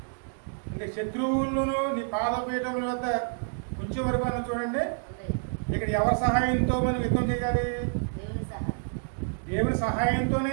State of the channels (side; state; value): left; silent; 59 dB below the other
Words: అంటే శత్రువులను నీ పాదపీఠముల వద్ద ఉంచే వరకు అన్న చూడండి. ఇక్కడ ఎవరి సహాయంతో మనం యుద్ధం చేయాలి? దేవుని సహాయంతోనే